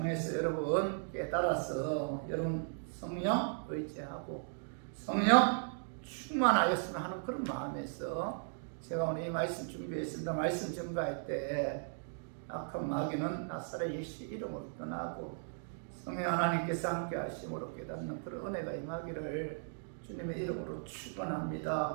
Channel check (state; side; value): silent; left; digital silence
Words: 여러분 깨달아서 여러분 성령 의지하고 성령 충만하였으면 하는 그런 마음에서 제가 오늘 이 말씀 준비했습니다. 말씀 전가할 때 악한 마귀는 나사렛 예수 이름으로 떠나고 성령 하나님께서 함께 하심으로 깨닫는 그런 은혜가 임하기를 주님의 이름으로